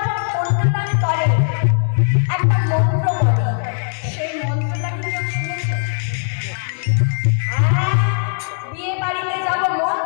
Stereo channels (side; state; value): right; silent; 67 dB below the other